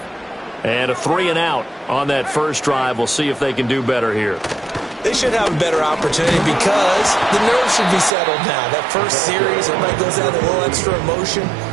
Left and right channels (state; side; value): drops out; left; at 8.1 s